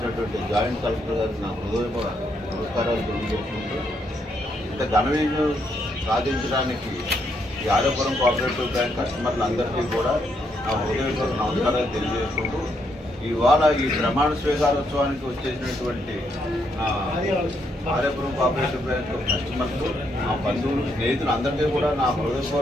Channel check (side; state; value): both; normal; correlation 0.76